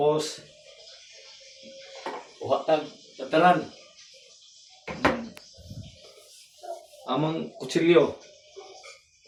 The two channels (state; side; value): identical; both; correlation 1.00